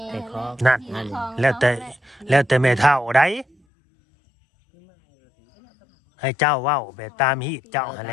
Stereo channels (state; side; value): drops out; right; at 3.6 s